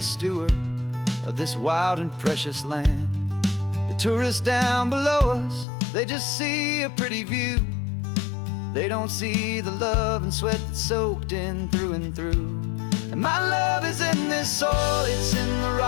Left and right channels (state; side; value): drops out; right; at 5.7 s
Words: steward of this wild and precious land. The tourists down below us, they just see a pretty view. They don't see the love and sweat that's soaked in through and through. And my love is in this soil, it's in the